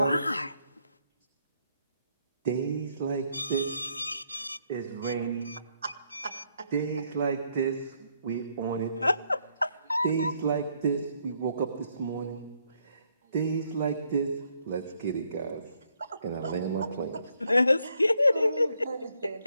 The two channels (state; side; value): inverted; both; correlation -0.73